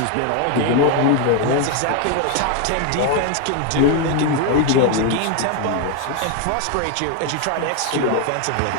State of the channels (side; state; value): both; different; correlation 0.01